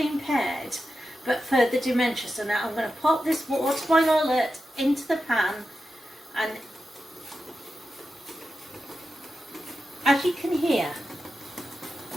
impaired, but for the dementia. So now I'm going to pop this water boiler alert into the pan, and as you can hear,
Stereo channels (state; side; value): normal; both; correlation 0.90